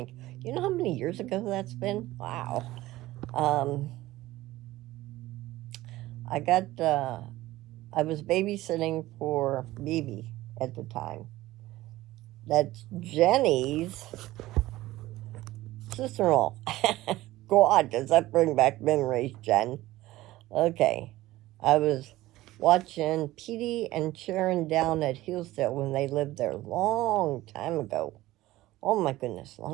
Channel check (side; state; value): left; quieter; 17.0 dB